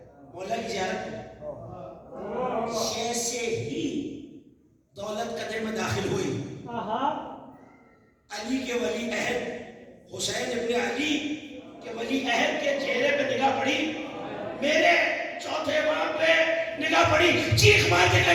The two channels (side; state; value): both; identical; correlation 1.00